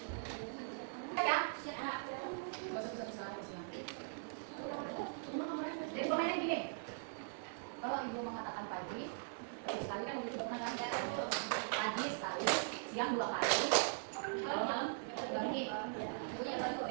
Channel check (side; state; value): left; silent; digital silence